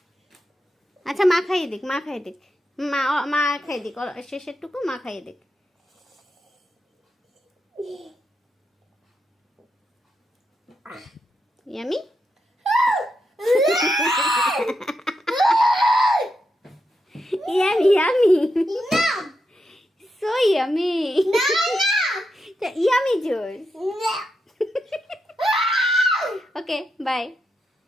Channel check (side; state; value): both; normal; correlation 0.85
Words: আচ্ছা, মা খাইয়ে দিক, মা খাইয়ে দিক, মা মা খাইয়ে দিক, শেষের টুকু মা খাইয়ে দিক। Yummy. Yummy, yummy. No. So yummy. No, no. The yummy juice. No. Okay, bye.